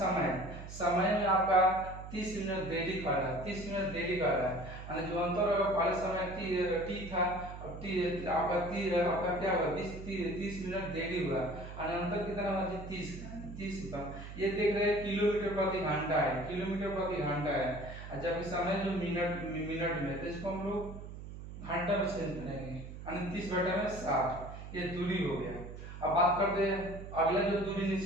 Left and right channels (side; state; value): right; noise; hum, 11 dB below the sound